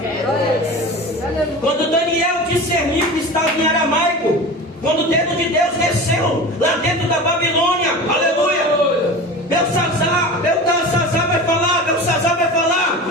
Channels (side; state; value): both; normal; correlation 0.33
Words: Quando Daniel discerniu que estava em aramaico, quando o dedo de Deus desceu lá dentro da Babilônia, aleluia, Belsazar vai falar